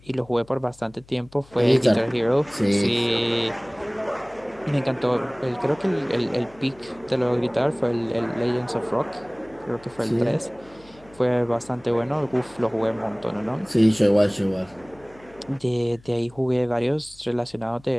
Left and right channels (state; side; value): noise; left; hum, 26 dB below the sound